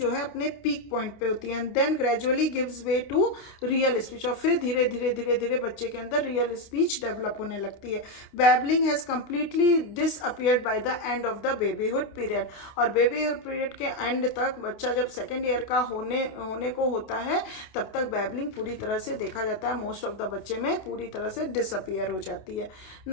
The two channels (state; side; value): late; right; 29 ms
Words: जो है अपने peak point पे होती है and then gradually gives way to real speech. और फिर धीरे धीरे बच्चे के अंदर real speech develop होने लगती है. Babbling has completely disappeared by the end of the babyhood period. और babyhood period के एंड तक बच्चा जब सेकेंड ईयर का होने को होता है तब तक babbling पूरी तरह से देखा जाता है मोस्ट ऑफ द बच्चे में पूरी तरह से डिसअपियर हो जाती है.